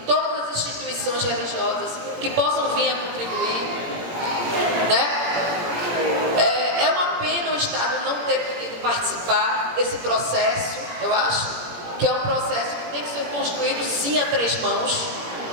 as instituições religiosas que possam vir a contribuir, né? É uma pena o Estado não ter podido participar desse processo. Eu acho que é um processo que tem que ser construído sim a três mãos,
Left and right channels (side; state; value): left; late; 17 ms